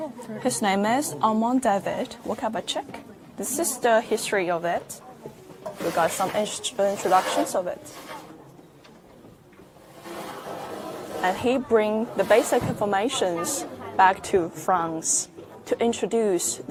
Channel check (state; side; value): identical; both; correlation 1.00